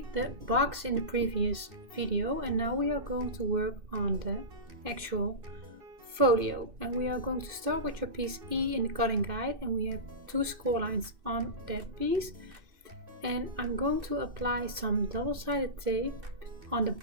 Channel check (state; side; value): late; left; 2.6 ms